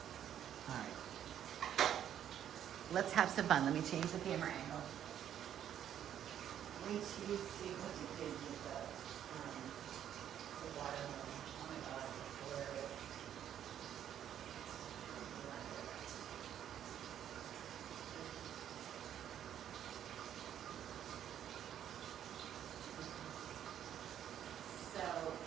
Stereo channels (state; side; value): quieter; left; 10.1 dB